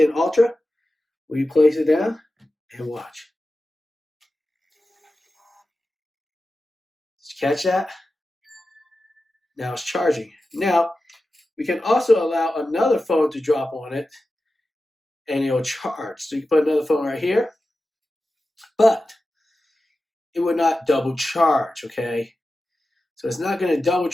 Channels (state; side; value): normal; both; correlation 0.93